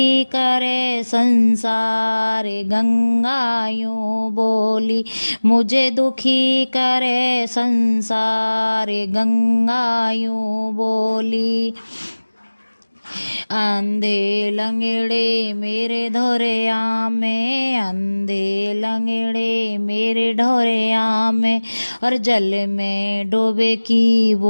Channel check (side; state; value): both; inverted; correlation -1.00